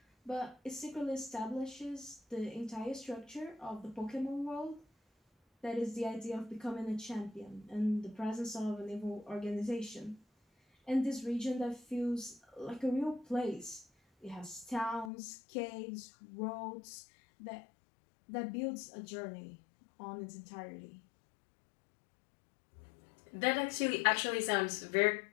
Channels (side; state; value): right; drops out; at 15.1 s